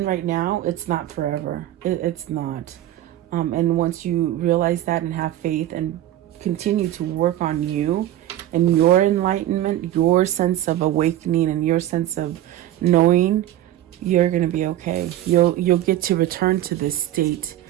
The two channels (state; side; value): quieter; left; 13.2 dB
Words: right now, it's not forever. It's not. And once you realize that and have faith and continue to work on you and your enlightenment, your sense of awakening and your sense of knowing, you're going to be okay. You'll get to return to this state,